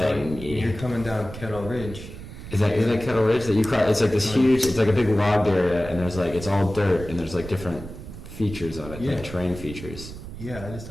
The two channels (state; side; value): noise; right; rumble, 12 dB below the sound